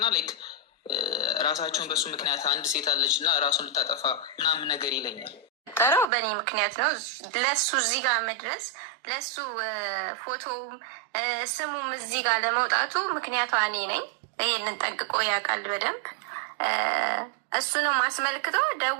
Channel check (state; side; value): drops out; left; at 6.1 s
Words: ላይክ ራሳቸውን በሱ ምክንያት አንድ ሴት አለች እና ራሱን ልታጠፋ ምናምን ነገር ይለኛል። ጠረው በእኔ ምክንያት ነው ለሱ እዚህ ጋር መድረስ ለሱ ፎቶውም ስሙም እዚህ ጋር ለመውጣቱ ምክንያቷ እኔ ነኝ። ይህንን ጠንቅቆ ያውቃል በደንብ። እሱንም አስመልክቶ